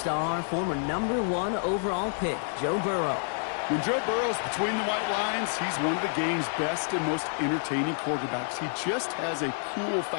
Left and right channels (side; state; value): right; silent; 59 dB below the other